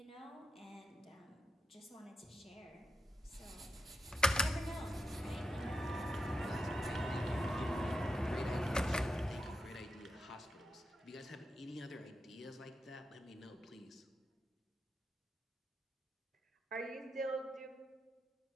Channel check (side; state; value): both; normal; correlation 0.86